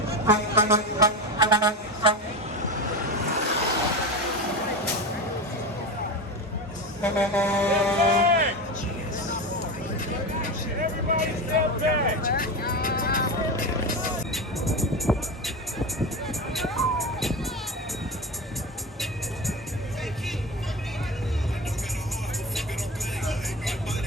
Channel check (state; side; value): normal; both; correlation 0.22